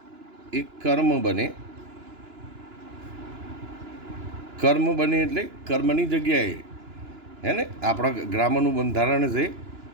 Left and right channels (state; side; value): late; left; 2.9 ms